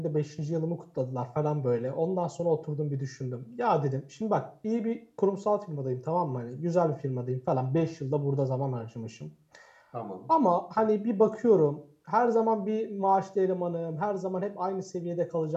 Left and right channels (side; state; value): both; identical; correlation 1.00